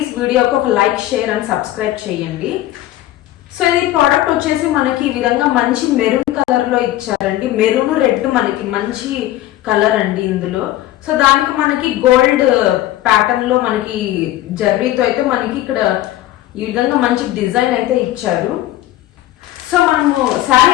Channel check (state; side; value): quieter; right; 14.8 dB